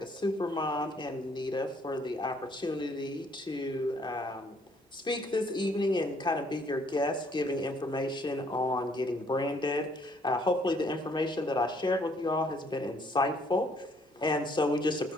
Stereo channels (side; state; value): both; normal; correlation 0.65